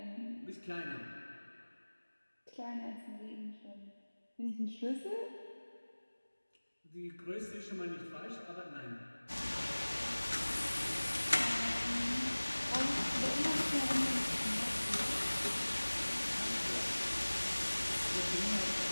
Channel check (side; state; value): both; inverted; correlation -1.00